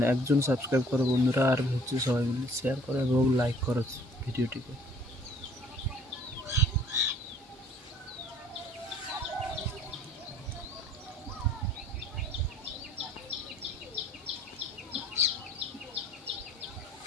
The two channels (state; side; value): normal; both; correlation 0.55